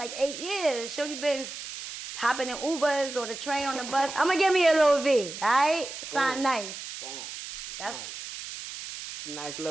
8 years. Shorty been hopping in Ubers or the train on the bus. I'm gonna give me a little V. All right, sound nice. Boom. That's nice. Nice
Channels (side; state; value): right; noise; hiss, 10 dB below the sound